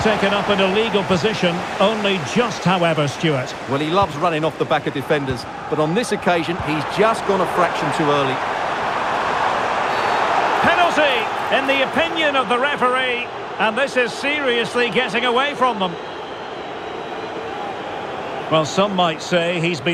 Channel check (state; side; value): identical; both; correlation 1.00